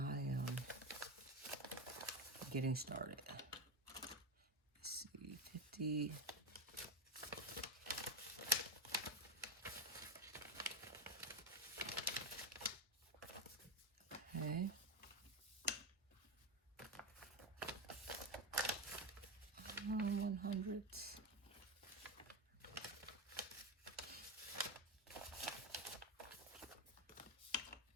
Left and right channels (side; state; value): both; normal; correlation 0.13